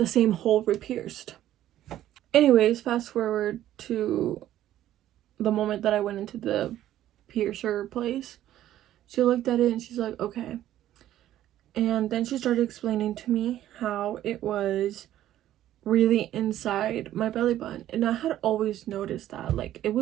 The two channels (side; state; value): left; quieter; 12.8 dB